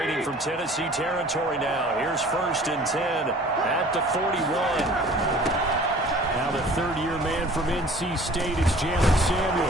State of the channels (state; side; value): normal; both; correlation 0.48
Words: from Tennessee territory now. Here's first and 10 at the 41. Now the third-year man from NC State is Jalen